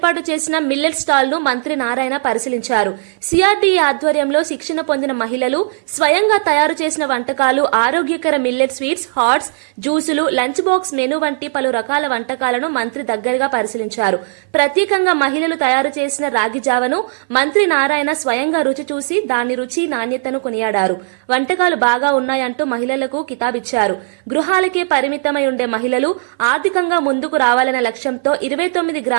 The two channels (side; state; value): left; silent; 58 dB below the other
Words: చేసిన మిల్లెట్ స్టాల్ ను మంత్రి నారాయణ పరిశీలించారు. సిఆర్డీఏ ఆధ్వర్యంలో శిక్షణ పొందిన మహిళలు స్వయంగా తయారు చేసిన వంటకాలు, ఆరోగ్యకర మిల్లెట్ స్వీట్స్, హాట్స్, జ్యూసులు, లంచ్ బాక్స్ మెనూ వంటి పలు రకాల వంటకాలను మంత్రి దగ్గరగా పరిశీలించారు. ప్రత్యేకంగా మహిళలు తయారు చేసిన రాగి జావను మంత్రి నారాయణ స్వయంగా రుచి చూసి దాని రుచి, నాణ్యతను కొనియాడారు. వంటకాలు బాగా ఉన్నాయంటూ మహిళలకు కితాబిచ్చారు. గృహాలకే పరిమితమై ఉండే మహిళలు ఆర్థికంగా ముందుకు రావాలనే లక్ష్యంతో 29